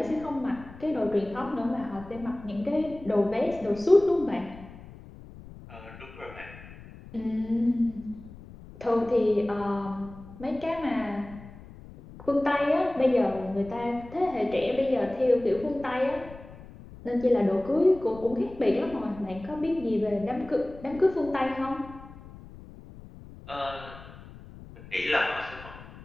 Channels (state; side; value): noise; left; rumble, 17 dB below the sound